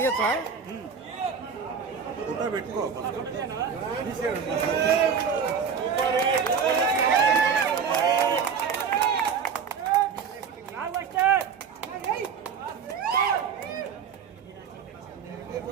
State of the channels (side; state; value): left; quieter; 6.6 dB